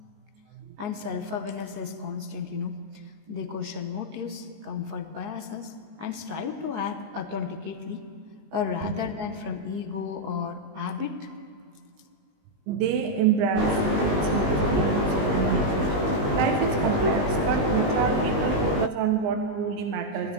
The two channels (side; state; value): left; late; 19 ms